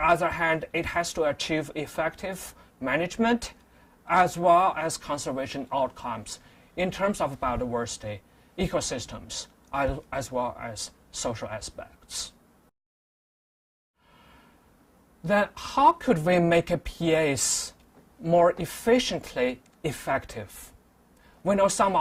hand, it has to achieve effective management as well as conservation outcomes in terms of biodiversity, ecosystems, as well as social aspects. Then how could we make a PAs more efficiently effective? We know some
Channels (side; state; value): both; identical; correlation 1.00